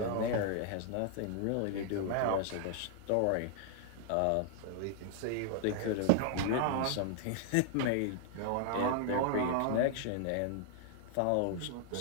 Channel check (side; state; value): both; different; correlation -0.01